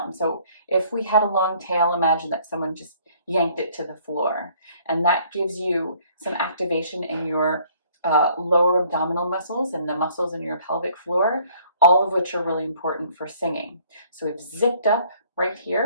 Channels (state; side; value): inverted; both; correlation -0.60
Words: So if we had a long tail, imagine that someone just yanked it to the floor. And that gives you some activation in your lower abdominal muscles and the muscles in your pelvic floor, all of which are really important for singing. So we've zipped up right